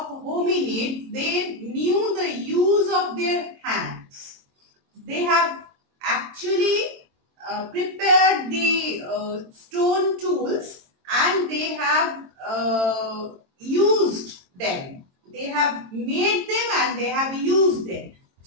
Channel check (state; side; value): late; left; 22 ms